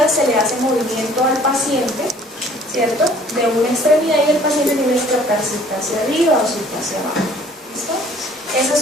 se le hace movimiento al paciente, ¿cierto? De una extremidad y el paciente tiene que tratar si está hacia arriba o si está hacia abajo. ¿Listo? Esas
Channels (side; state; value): both; normal; correlation 0.55